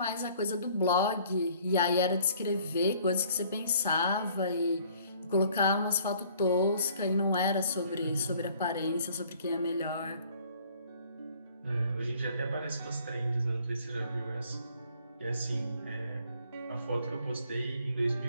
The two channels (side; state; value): both; inverted; correlation -0.57